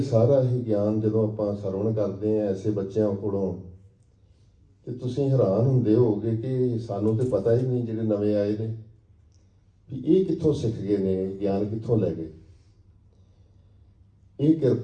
ਸਾਰਾ ਹੀ ਗਿਆਨ ਜਦੋਂ ਆਪਾਂ ਸਰਵਣ ਕਰਦੇ ਹਾਂ ਐਸੇ ਬੱਚਿਆਂ ਕੋਲੋਂ, ਤੇ ਤੁਸੀਂ ਹੈਰਾਨ ਹੁੰਦੇ ਹੋਗੇ ਕਿ ਸਾਨੂੰ ਤੇ ਪਤਾ ਹੀ ਨਹੀਂ, ਜਿਹੜੇ ਨਵੇਂ ਆਏ ਨੇ, ਵੀ ਇਹ ਕਿੱਥੋਂ ਸਿੱਖ ਗਏ ਨੇ, ਗਿਆਨ ਕਿੱਥੋਂ ਲੈ ਗਏ। ਇਹ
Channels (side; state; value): both; identical; correlation 1.00